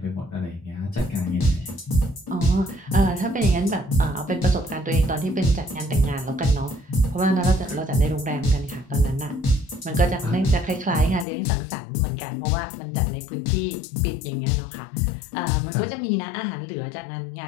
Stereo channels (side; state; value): right; drops out; at 11.2 s